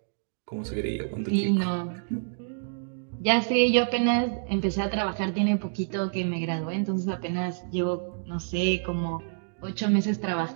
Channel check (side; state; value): left; silent; digital silence